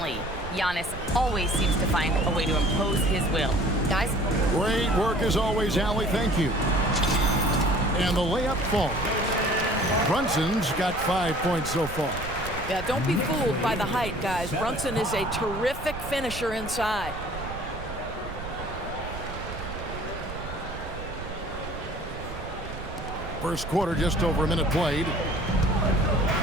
Giannis always seems to find a way to impose his will. Guys? Great work as always, Allie. Thank you. And the layup falls. Brunson's got 5 points so far. Yeah, don't be fooled by the height, guys. Brunson is a terrific finisher inside. First quarter, just over a minute played.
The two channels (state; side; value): noise; right; rumble, 10 dB below the sound